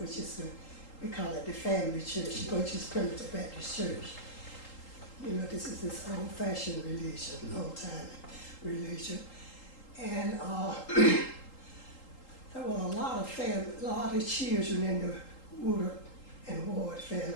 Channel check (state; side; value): late; right; 3.8 ms